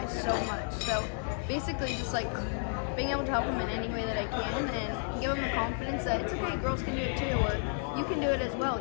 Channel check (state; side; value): silent; right; 56 dB below the other